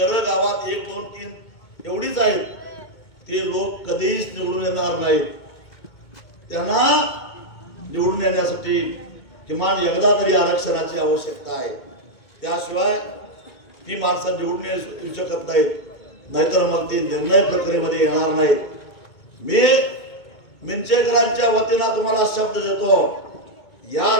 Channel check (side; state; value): right; late; 2.2 ms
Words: गावात 1, 2, 3 एवढीच आहेत, ते लोक कधीच निवडून येणार नाहीत. त्यांना निवडून येण्यासाठी किमान एकदा तरी आरक्षणाची आवश्यकता आहे. त्याशिवाय ती माणसं निवडून येऊ शकत नाहीत, नाहीतर मग ती निर्णय प्रक्रियेमध्ये येणार नाहीत. मी मिंचेकरांच्या वतीनं तुम्हाला शब्द देतो, या